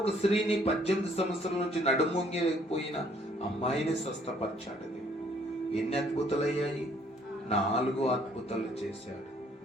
స్త్రీని 18 సంవత్సరాల నుంచి నడుమొంగిపోయిన అమ్మాయిని స్వస్థపరిచాడు. ఎన్ని అద్భుతాలు అయ్యాయి? 4 అద్భుతాలు చేశాడు.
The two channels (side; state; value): both; normal; correlation 0.63